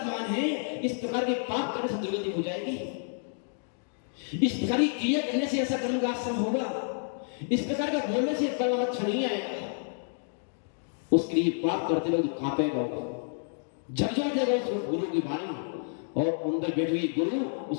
है, इस प्रकार के पाप करने से दुर्गति हो जाएगी। इस प्रकार की क्रिया करने से ऐसा कर्म का आश्रम होगा, इस प्रकार का बोलने से परिणाम अच्छा नहीं आएगा। उसके लिए पाप करते वक्त कांपेगा, झकझोर जाएगा उस गुरु की वाणी, और अंदर बैठे हुए गुरु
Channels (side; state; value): right; silent; digital silence